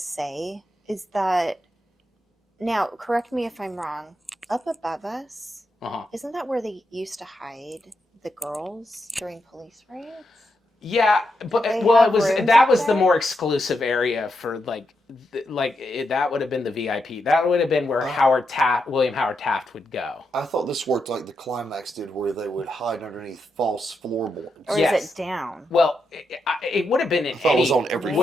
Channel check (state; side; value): normal; both; correlation 0.84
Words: is that, now, correct me if I'm wrong, up above us, isn't that where they used to hide the girls during police raids? Yeah, but They well, have it was rooms that up was the there? more exclusive area for that would have been the VIP. That would have been where William Howard Taft would go. I thought this worked like the Climax did, where they would hide underneath false floorboards. Or Yes. is it down? Well, it would have been in thought it was on every